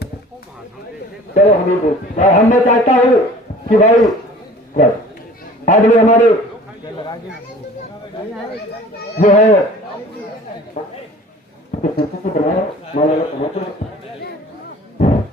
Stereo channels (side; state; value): both; normal; correlation 0.46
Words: चलो हम मैं चाहता हूँ कि भाई आज भी हमारे जो है